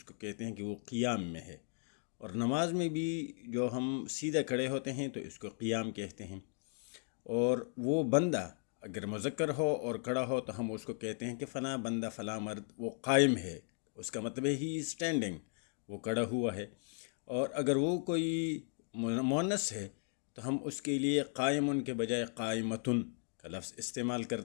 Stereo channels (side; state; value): right; silent; 53 dB below the other